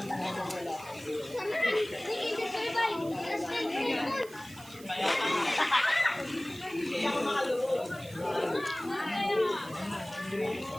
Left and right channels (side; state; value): right; noise; hiss, 19 dB below the sound